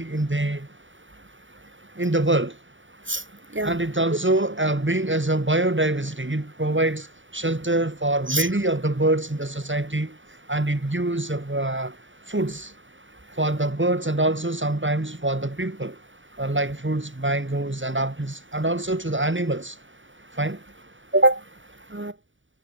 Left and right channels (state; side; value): late; left; 0.56 ms